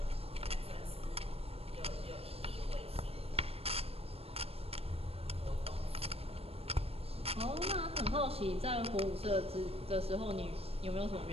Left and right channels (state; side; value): late; left; 0.28 ms